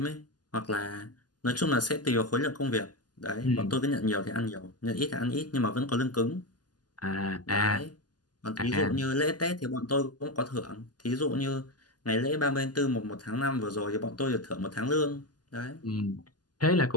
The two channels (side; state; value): right; late; 0.70 ms